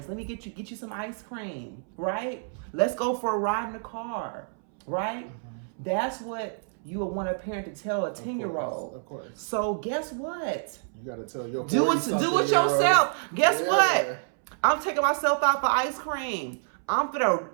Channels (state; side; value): silent; left; 59 dB below the other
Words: Let me get you some ice cream. Right? Let's go for a ride in the car. Right? That's what you would want a parent to tell a 10-year-old. Of course. So guess what? You got to tell your do it yourself. Guess what? I'm taking myself out for ice cream. I'm gonna